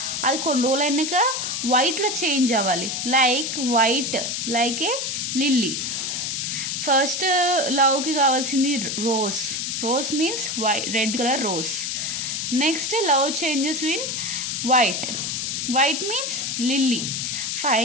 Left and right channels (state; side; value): noise; left; hiss, 2 dB below the sound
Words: అది కొన్ని రోజులు అయినాక వైట్లో చేంజ్ అవ్వాలి, white like a lily. First లవ్కి కావాల్సింది rose means red colour rose. Next love changes in white means lily.